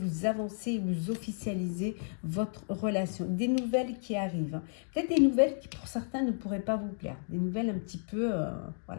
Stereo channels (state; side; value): silent; right; digital silence